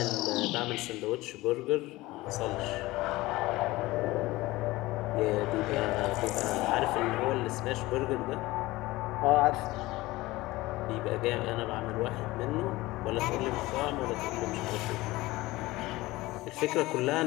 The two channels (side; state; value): right; quieter; 19.3 dB